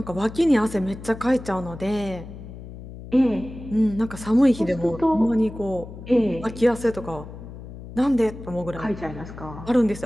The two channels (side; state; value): left; noise; hum, 13 dB below the sound